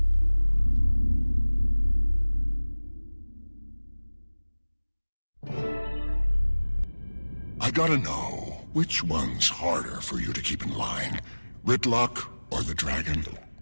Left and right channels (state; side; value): inverted; both; correlation -1.00